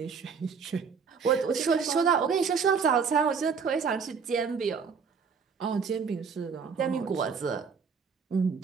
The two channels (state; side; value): quieter; left; 5.8 dB